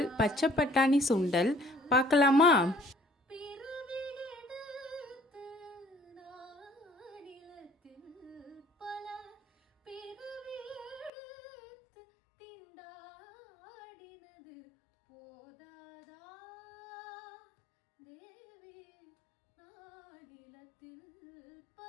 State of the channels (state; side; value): drops out; right; at 11.1 s